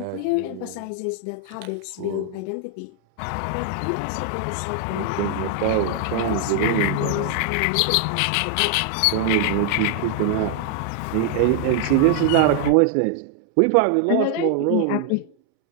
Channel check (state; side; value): different; both; correlation 0.00